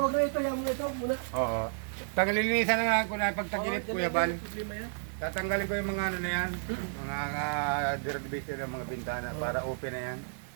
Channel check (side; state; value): left; silent; digital silence